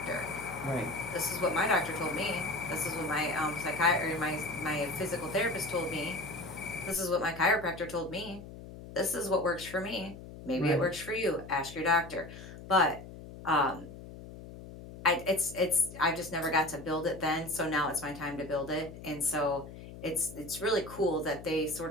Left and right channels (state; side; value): noise; left; hum, 14 dB below the sound